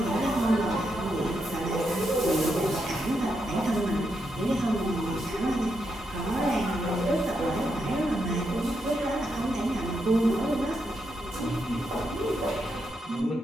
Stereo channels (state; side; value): normal; both; correlation 0.82